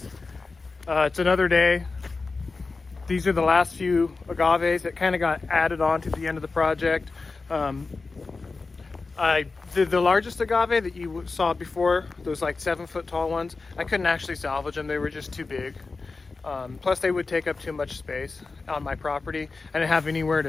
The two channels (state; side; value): quieter; right; 4.0 dB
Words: it's another day. These are the last few agaves that kind of got added on to the end of the project. The largest agave that you saw before, those like 7-foot tall ones, I couldn't actually salvage them. They were just too big. Plus they would take up too much space on my property. I didn't have anywhere